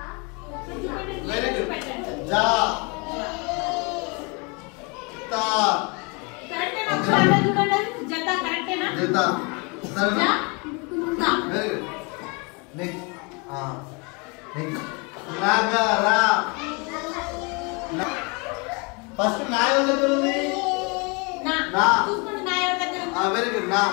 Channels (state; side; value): quieter; right; 31.1 dB